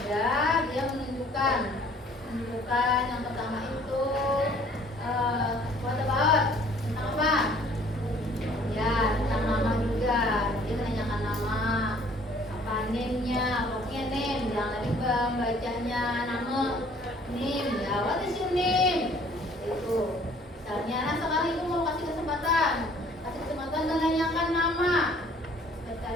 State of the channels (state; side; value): normal; both; correlation 0.56